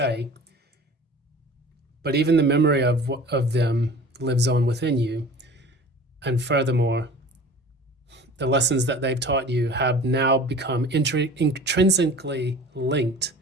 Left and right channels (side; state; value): both; normal; correlation 0.41